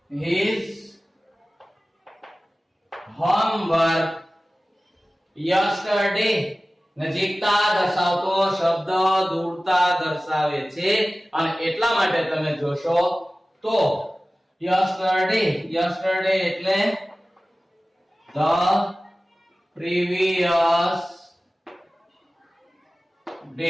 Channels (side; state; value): both; normal; correlation 0.97